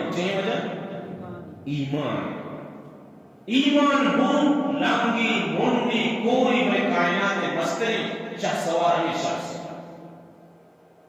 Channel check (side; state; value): both; identical; correlation 1.00